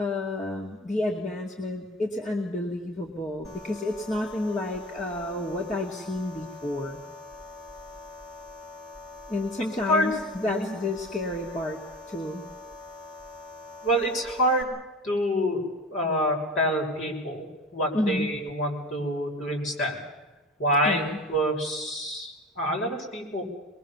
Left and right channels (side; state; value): both; normal; correlation 0.35